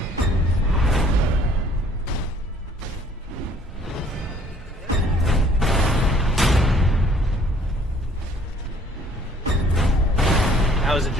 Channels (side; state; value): both; normal; correlation 0.58